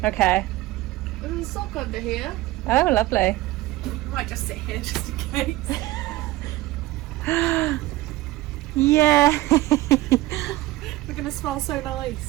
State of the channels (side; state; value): left; quieter; 17.5 dB